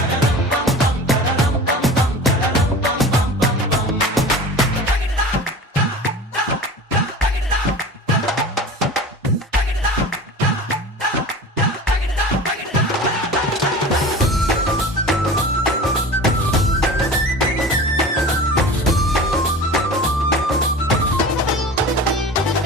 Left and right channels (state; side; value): normal; both; correlation 0.36